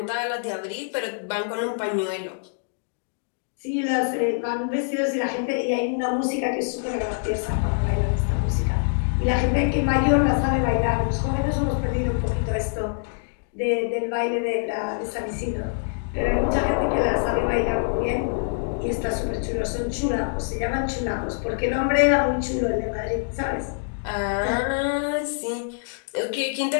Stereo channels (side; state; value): right; silent; digital silence